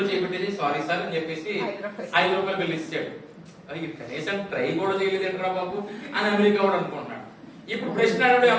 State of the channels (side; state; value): both; identical; correlation 1.00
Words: చేపెట్టేసి సారీ సార్ అని చెప్పేసి 5 రూపాయలు బిల్ ఇచ్చాడు. అది కనీసం ట్రై కూడా చేయలేదేంట్రా బాబు అని అమెరికా వాడు అనుకుంటున్నాడు. ఇప్పుడు ప్రశ్న అడిగాడు